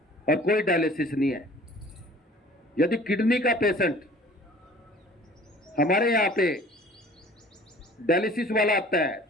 और कोई डायलिसिस नहीं है। यदि किडनी का पेशेंट हमारे यहाँ पे डायलिसिस वाला आता है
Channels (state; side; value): normal; both; correlation 0.48